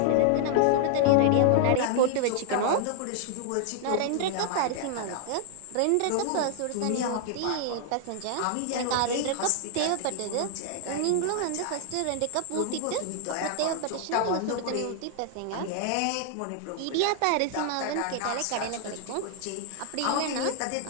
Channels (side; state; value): both; different; correlation 0.00